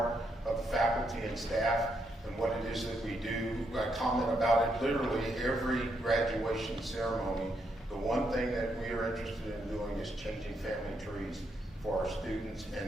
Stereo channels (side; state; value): both; normal; correlation 0.78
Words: of the faculty and staff and what it is that we do. I comment about it literally every graduation ceremony. The one thing that we are interested in doing is changing family trees for our students and